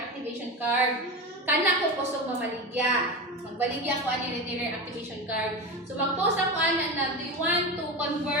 card kana ko kusog mamaligya magbaligya ko ani retailer activation card. So mag-post ako ana na do you want to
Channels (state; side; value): normal; both; correlation 0.22